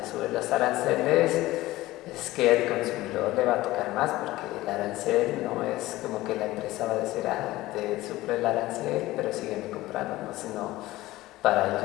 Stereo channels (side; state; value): right; quieter; 17.6 dB